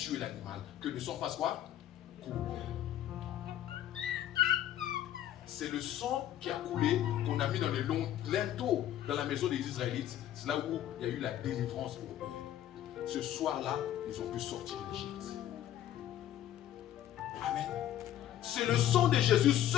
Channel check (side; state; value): right; quieter; 11.9 dB